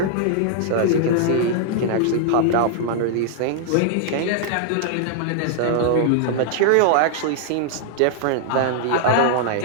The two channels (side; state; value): both; different; correlation -0.01